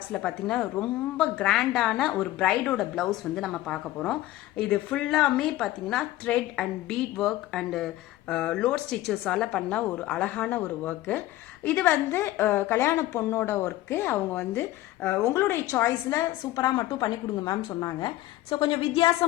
பாத்தீங்கன்னா ரொம்ப கிராண்டான ஒரு பிரைடோட பிளவுஸ் வந்து நம்ம பார்க்க போறோம். இது ஃபுல்லாமே பாத்தீங்கன்னா thread and bead work and load stitches ஆல பண்ண ஒரு அழகான ஒரு work. இது வந்து கல்யாண பொண்ணோட ஒர்க். அவங்க வந்து உங்களுடைய சாய்ஸ்ல சூப்பரா மட்டும் பண்ணி கொடுங்க மேம் சொன்னாங்க. ஸோ கொஞ்சம்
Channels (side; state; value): right; quieter; 15.8 dB